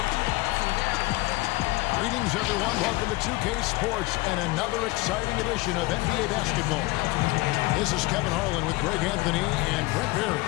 Greetings, everyone. Welcome to 2K Sports and another exciting edition of NBA basketball. This is Kevin Harlan with Greg Anthony and Brett Berry.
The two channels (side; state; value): right; quieter; 20.9 dB